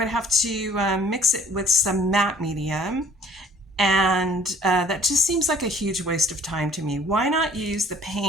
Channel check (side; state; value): both; normal; correlation 0.55